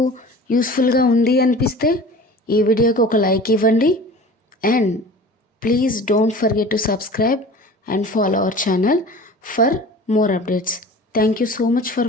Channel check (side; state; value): both; normal; correlation 0.40